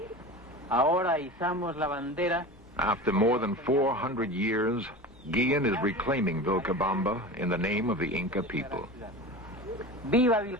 Ahora izamos la bandera. After more than 400 years, Guillen is reclaiming Vilcabamba in the name of the Inca people. Viva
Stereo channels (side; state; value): left; noise; hum, 29 dB below the sound